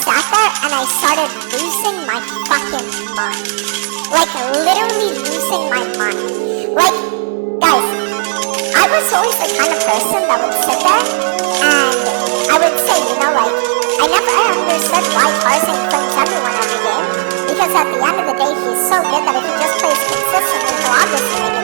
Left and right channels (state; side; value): silent; left; digital silence